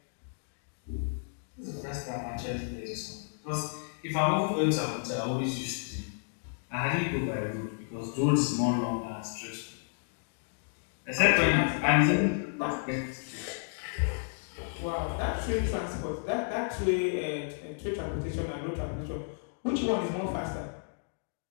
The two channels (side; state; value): right; silent; digital silence